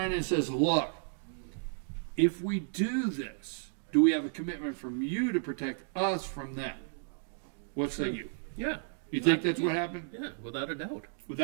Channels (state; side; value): silent; left; digital silence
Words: and says, look, if we do this, do we have a commitment from you to protect us from them? What say you? Yeah. You think that's what happened? Yeah, without a doubt.